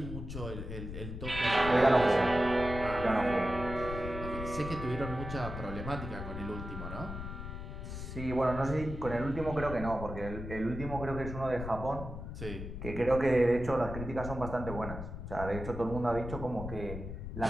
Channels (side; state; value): left; noise; rumble, 7 dB below the sound